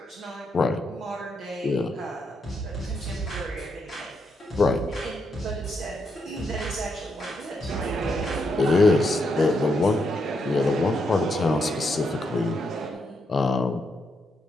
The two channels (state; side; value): normal; both; correlation 0.80